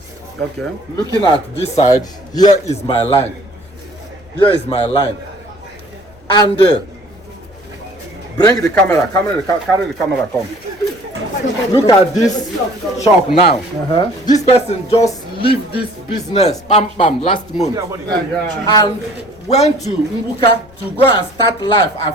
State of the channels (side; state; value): left; noise; rumble, 27 dB below the sound